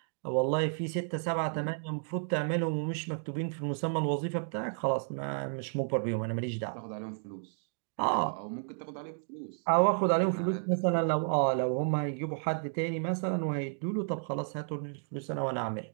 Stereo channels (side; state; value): left; silent; digital silence